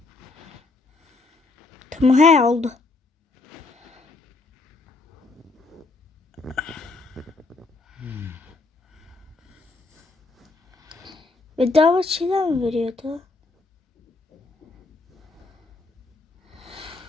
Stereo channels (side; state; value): right; quieter; 3.5 dB